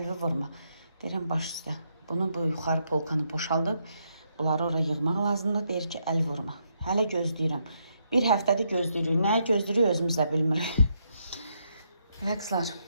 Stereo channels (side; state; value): both; inverted; correlation -0.78